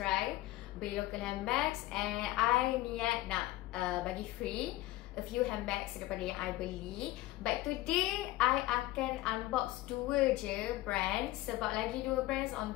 beli local handbags. And I niat nak bagi free a few handbags daripada yang I beli. But today I akan unbox dua je brands, sebab lagi dua brands on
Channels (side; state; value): right; quieter; 17.0 dB